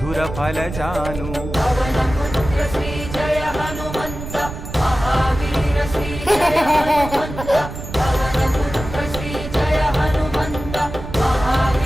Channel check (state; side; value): noise; right; rumble, 9 dB below the sound